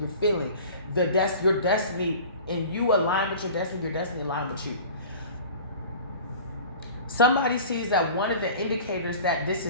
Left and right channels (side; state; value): both; inverted; correlation -0.41